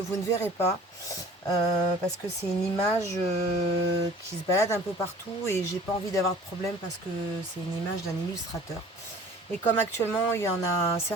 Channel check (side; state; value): both; normal; correlation 0.47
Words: ne verrez pas parce que c'est une image qui se balade un peu partout et j'ai pas envie d'avoir de problème parce que c'est une image d'un illustrateur. Et comme actuellement, il y en a